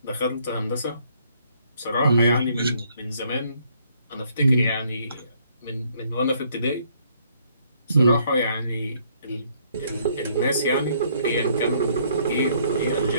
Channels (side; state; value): both; inverted; correlation -0.66